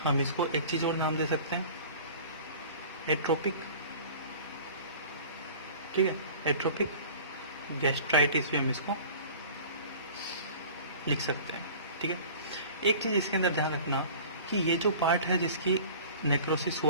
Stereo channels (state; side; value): inverted; both; correlation -0.43